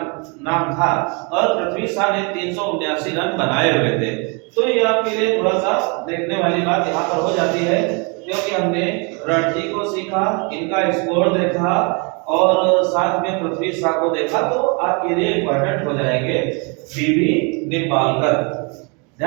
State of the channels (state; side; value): quieter; left; 32.7 dB